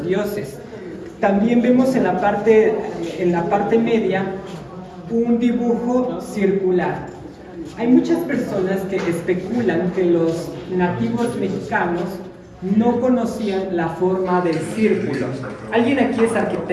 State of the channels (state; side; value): identical; both; correlation 1.00